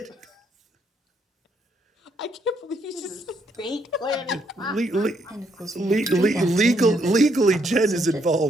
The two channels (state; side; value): normal; both; correlation 0.73